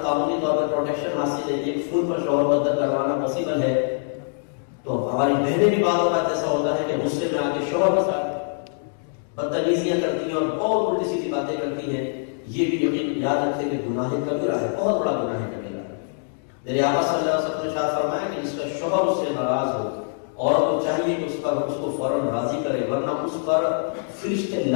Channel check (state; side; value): silent; right; digital silence